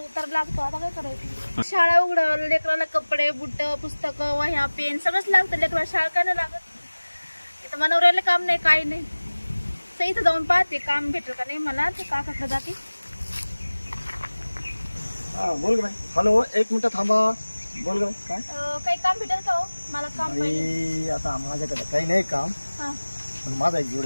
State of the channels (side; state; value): both; inverted; correlation -1.00